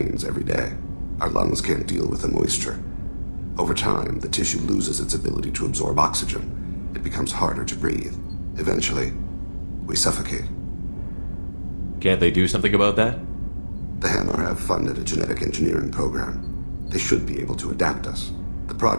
every day. Our lungs can't deal with the moisture. Over time, the tissue loses its ability to absorb oxygen. It becomes harder to breathe. Eventually, we suffocate. Can't they do something about that? The Hanar have funded a genetic engineering program. They should be able to adapt us. The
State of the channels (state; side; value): inverted; both; correlation -1.00